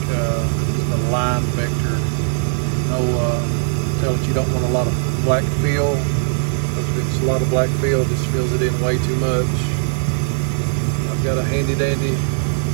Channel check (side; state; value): left; silent; digital silence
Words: a line vector. Tell it you don't want a lot of black fill, because if it's a lot of black fill, it just fills it in way too much. I've got a handy dandy